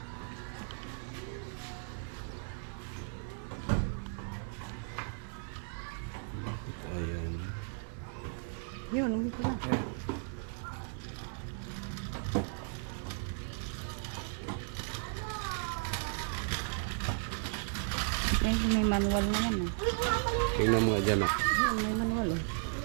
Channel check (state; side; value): silent; left; 54 dB below the other